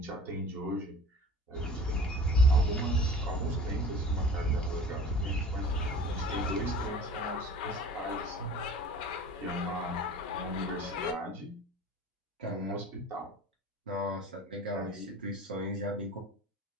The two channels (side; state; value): both; normal; correlation 0.42